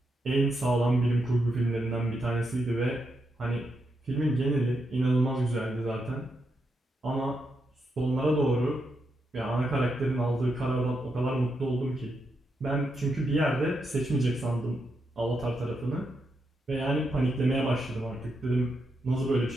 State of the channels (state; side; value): normal; both; correlation 0.83